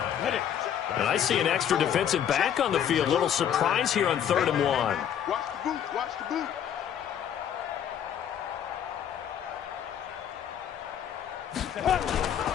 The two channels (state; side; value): quieter; right; 9.3 dB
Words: And I see an extra defensive back on the field. Little surprise here on 3rd and 1. Watch the boot. Watch the boot.